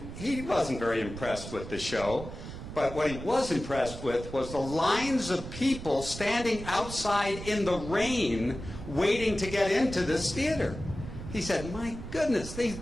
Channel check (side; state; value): right; noise; rumble, 10 dB below the sound